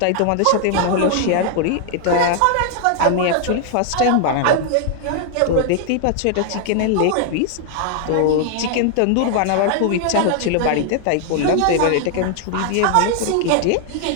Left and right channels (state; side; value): different; both; correlation 0.00